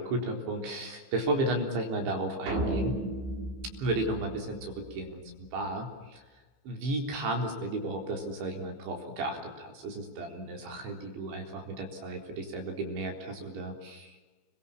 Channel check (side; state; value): left; late; 15 ms